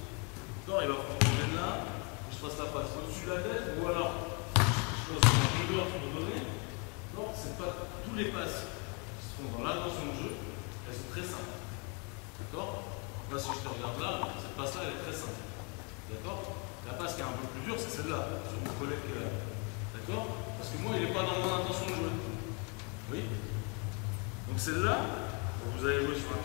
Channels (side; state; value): right; quieter; 34.0 dB